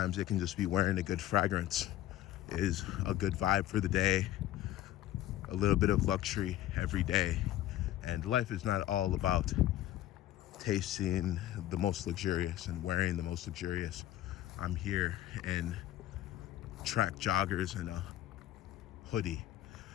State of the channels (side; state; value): right; quieter; 13.3 dB